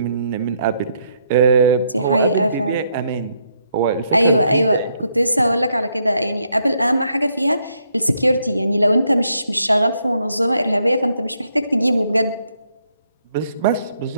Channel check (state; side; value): inverted; both; correlation -0.74